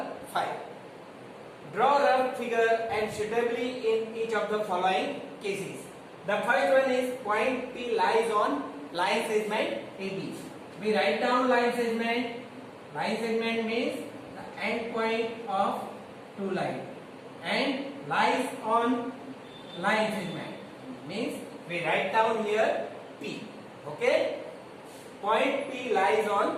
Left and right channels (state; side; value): identical; both; correlation 1.00